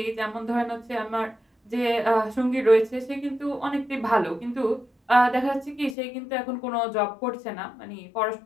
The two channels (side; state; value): right; drops out; at 6.0 s